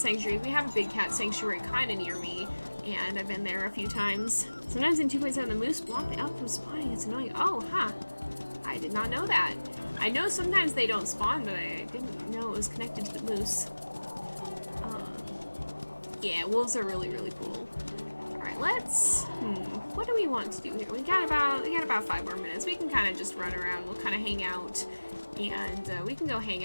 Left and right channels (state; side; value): inverted; both; correlation -1.00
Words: We have a big cat sanctuary kind of near me, and I've been there a few times. Sometimes in 2.7, the moose block the elk from spawning. It's annoying. Oh, huh. I did not know that. I know sometimes they don't spawn, but I didn't know it was connected to the moose. Yeah, wolves are really, really cool. Alright, let's... what do we want to do here? We got about 5 more minutes. We can kind of just run around. We'll kind of hang out. And we can go hang